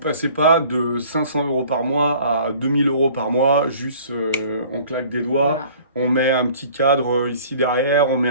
passez pas de 500 euros par mois à 2000 euros par mois, juste on claque des doigts, on met un petit cadre ici derrière, on met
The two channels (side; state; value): both; inverted; correlation -0.50